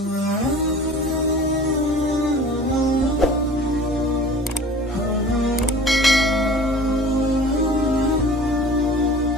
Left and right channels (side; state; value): both; normal; correlation 0.44